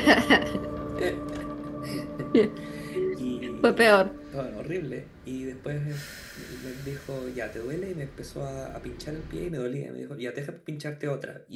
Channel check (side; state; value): both; identical; correlation 1.00